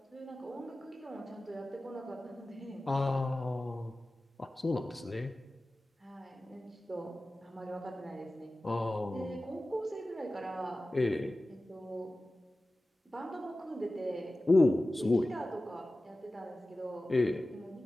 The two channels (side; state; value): both; normal; correlation 0.95